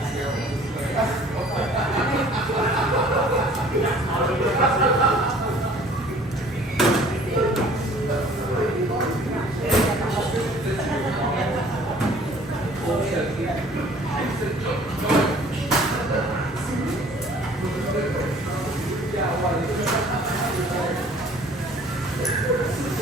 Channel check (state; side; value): normal; both; correlation 0.52